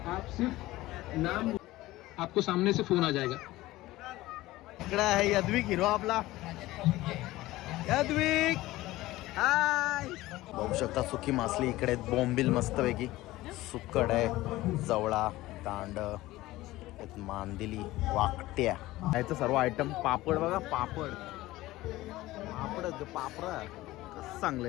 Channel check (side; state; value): right; quieter; 17.6 dB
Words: आप सिर्फ नाम, आपको सामने से फोन आ जाएगा. इकडे आहे यद्विक हिरो आपला. यद्विक हाय. बघू शकता सुकी मासली इकडे, बोंबील मस्तपैकी, सुक्कड आहे, जवळा, तांड, मांदिली, वाकट्या, याचं सर्व आयटम. पापड बघा, पापड कसं चांगलं